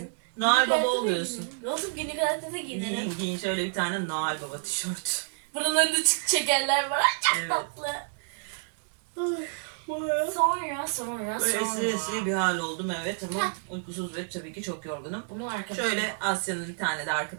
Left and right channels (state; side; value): silent; left; digital silence